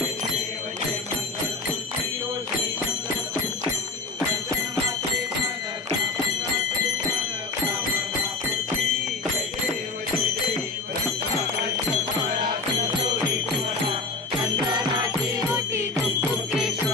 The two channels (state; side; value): quieter; right; 3.8 dB